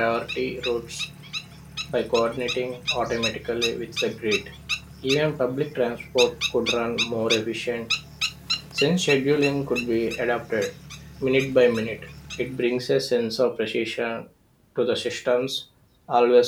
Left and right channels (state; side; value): identical; both; correlation 1.00